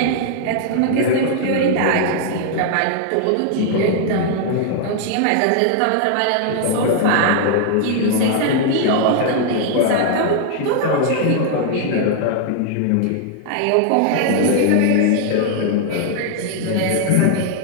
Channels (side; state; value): both; different; correlation 0.00